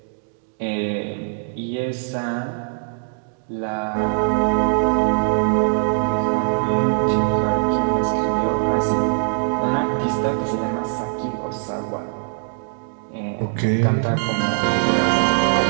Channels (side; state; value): left; silent; digital silence